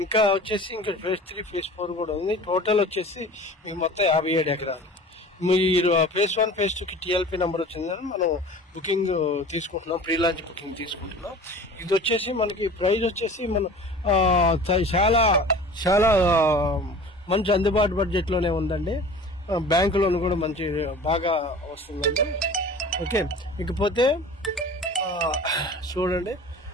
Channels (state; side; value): normal; both; correlation 0.41